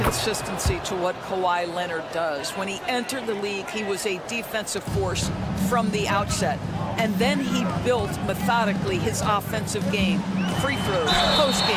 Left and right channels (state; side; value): identical; both; correlation 1.00